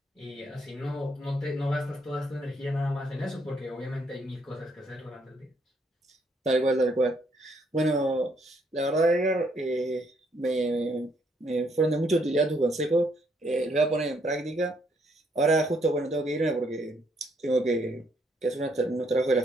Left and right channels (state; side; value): normal; both; correlation 0.71